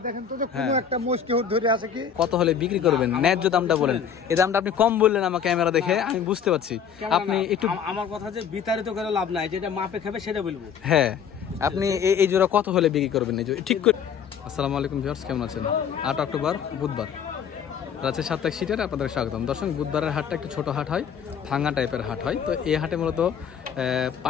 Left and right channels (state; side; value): quieter; right; 7.6 dB